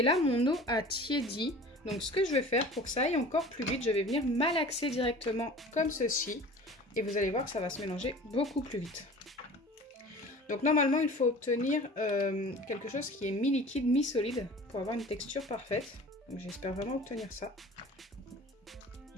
là mon eau a tiédi. Donc ce que je vais faire pour que ça aille encore plus vite, je vais venir malaxer directement comme ceci. Et vous allez voir que ça va se mélanger beaucoup plus vite. Donc normalement il faut obtenir quelque chose qui est mi-liquide, mi-solide pour avoir une texture parfaite. Donc j'espère vraiment obtenir ça.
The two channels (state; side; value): normal; both; correlation 0.41